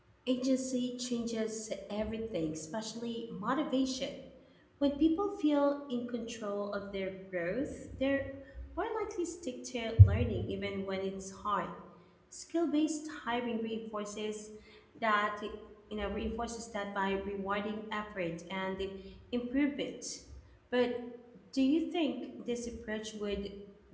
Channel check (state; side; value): identical; both; correlation 1.00